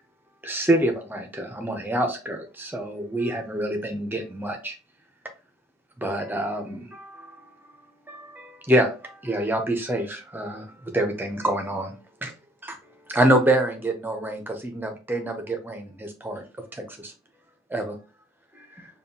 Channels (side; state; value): both; normal; correlation 0.63